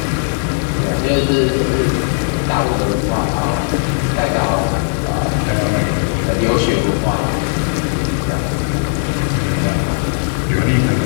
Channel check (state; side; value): silent; right; digital silence